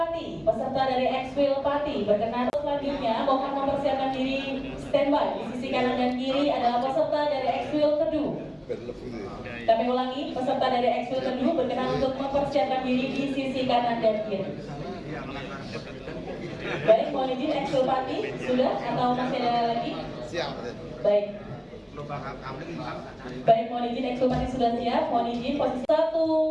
peserta dari Eksil Pati berkenan. Selanjutnya mohon mempersiapkan diri standby di sisi kanan dan kiri adalah peserta dari Eksil Kedu. Kami ulangi, peserta dari Eksil Kedu berkenan untuk mempersiapkan diri di sisi kanan dan kiri. Baik, mohon izin Eksil Pati sudah atau masih ada lagi? Siap. Baik. Baik, mohon izin Eksil Pati sudah siap. Mohon izin posisi 1,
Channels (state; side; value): identical; both; correlation 1.00